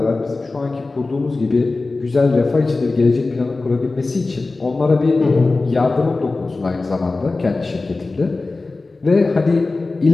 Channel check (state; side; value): quieter; right; 3.5 dB